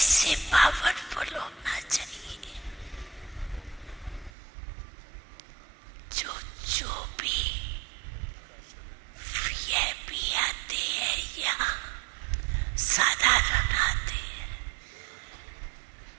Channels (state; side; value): drops out; left; at 4.3 s